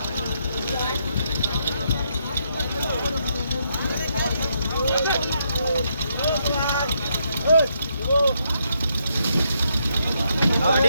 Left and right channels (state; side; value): inverted; both; correlation -0.77